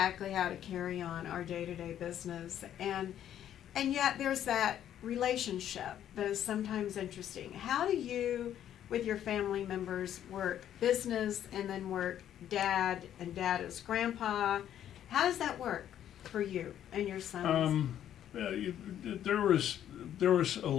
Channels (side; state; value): right; quieter; 10.7 dB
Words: how to carry on our day-to-day business. And yet there's that relationship that is sometimes interesting. How do you, with your family members, work business and then work dad, and dad is grandpa? How does that work for you and your sons? There was a